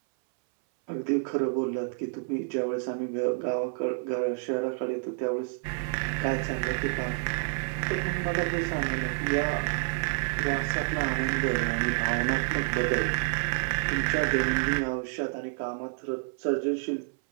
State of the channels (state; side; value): silent; left; 59 dB below the other